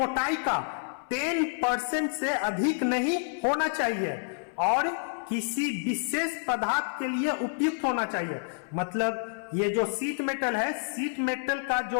का 10% से अधिक नहीं होना चाहिए और किसी विशेष पदार्थ के लिए उपयुक्त होना चाहिए। मतलब ये जो सीट मेटल है, सीट मेटल का जो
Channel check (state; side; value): silent; right; 59 dB below the other